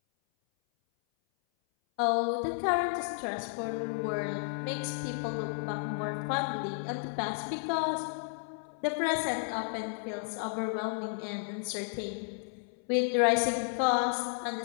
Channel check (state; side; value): silent; right; 56 dB below the other